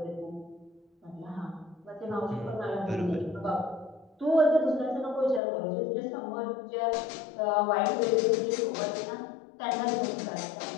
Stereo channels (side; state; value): right; drops out; at 5.4 s